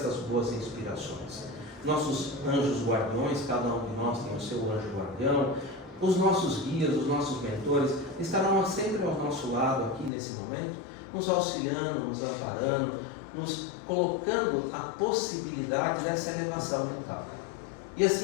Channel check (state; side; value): drops out; right; at 10.1 s